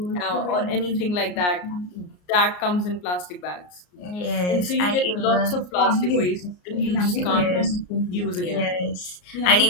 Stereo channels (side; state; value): right; late; 34 ms